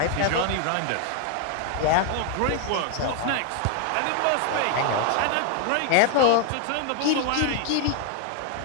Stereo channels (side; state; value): both; different; correlation 0.00